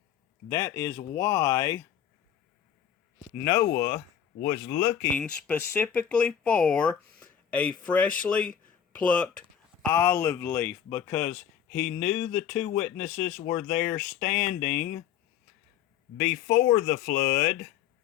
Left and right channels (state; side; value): quieter; right; 9.0 dB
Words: That is why Noah was looking specifically for a freshly plucked olive leaf, because he knew the two witnesses were there standing before the flood